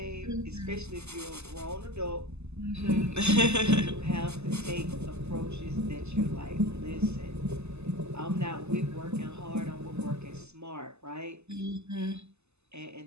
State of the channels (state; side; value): late; left; 0.80 ms